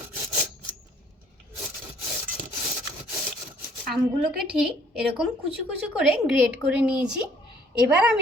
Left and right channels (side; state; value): both; normal; correlation 0.59